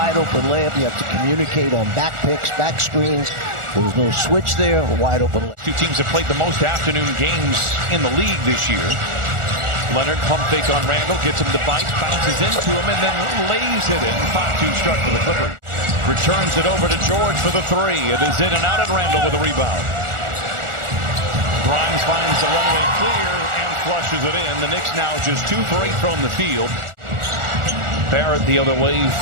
open layup. You have to communicate on back picks, back screens. There was no switch there. A wide open layup. Two teams have played the most afternoon games in the league this year. Leonard pump fake on Randall, gets him to bite, bounces into him, and then lays it in. 5-2 start for the Clippers. Returns it over to George for the three. It is in and out, and Randall with a rebound. Grimes finds the runway clear and flushes it in. The Knicks now just 2 for 8 from the field. Barrett the other way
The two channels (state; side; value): late; left; 1.4 ms